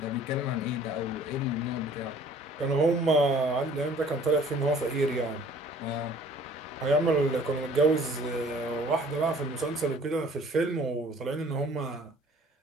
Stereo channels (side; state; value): both; normal; correlation 0.53